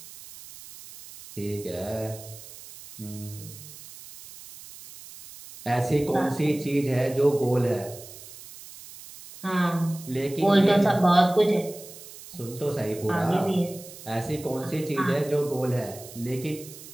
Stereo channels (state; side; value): noise; right; hiss, 16 dB below the sound